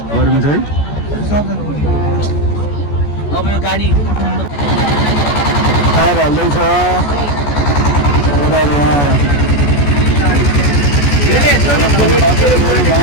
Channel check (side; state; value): right; late; 14 ms